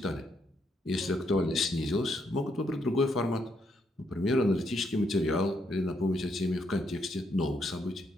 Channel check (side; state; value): both; normal; correlation 0.76